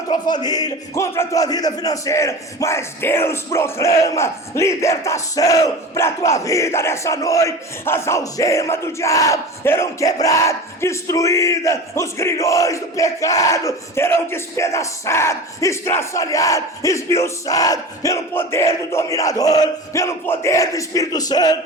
tua família, contra a tua vida financeira. Mas Deus proclama libertação para a tua vida nessa noite. As algemas do diabo serão quebradas, destruídas, os grilhões do pecado serão despedaçados, estraçalhados, esmiuçados pelo poder do dominador, pelo poder do Espírito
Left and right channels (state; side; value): normal; both; correlation 0.32